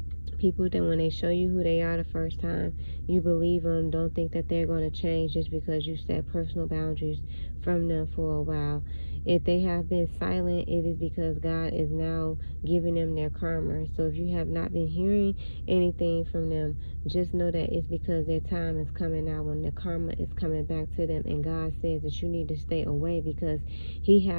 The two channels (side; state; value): both; inverted; correlation -1.00